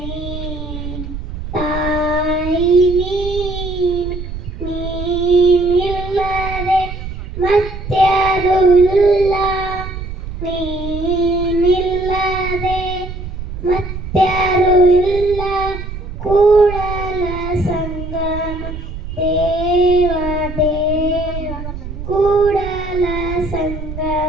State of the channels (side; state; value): right; noise; rumble, 8 dB below the sound